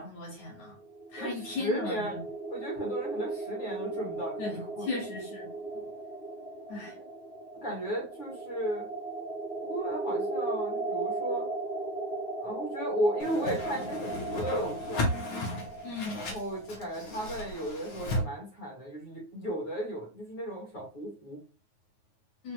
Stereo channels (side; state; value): right; late; 9.4 ms